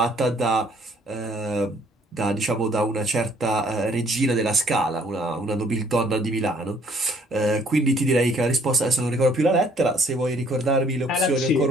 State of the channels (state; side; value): normal; both; correlation 0.61